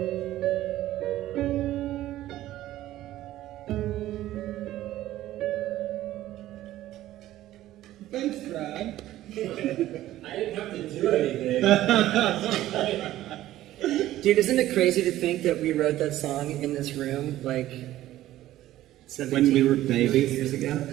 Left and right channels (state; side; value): quieter; left; 14.4 dB